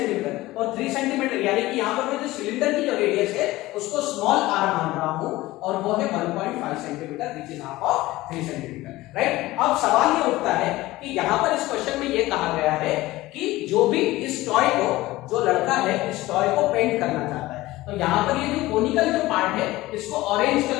और 3 सेंटीमीटर यानी कि यहाँ पर मैं जो सिलेंडर की जो रेडियस है उसको स्मॉल आर मान रहा हूँ, और वो है 1.5 centimetre which is half of 3 centimetre, right? अब सवाल ये उठता है कि यहाँ पर इस क्वेश्चन में ये कहा गया है कि जो भी इस टॉय को, जो लड़का है इस टॉय को पेंट करना चाहता है, तो यहाँ पर ये जो कोनिकल जो पार्ट है इसको ऑरेंज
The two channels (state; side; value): quieter; right; 18.2 dB